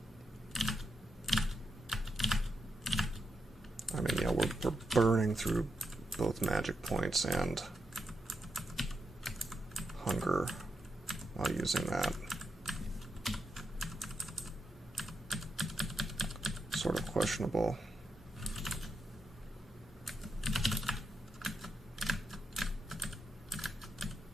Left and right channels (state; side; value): normal; both; correlation 0.85